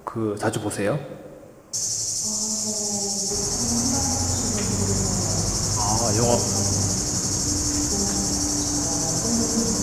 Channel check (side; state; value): both; identical; correlation 1.00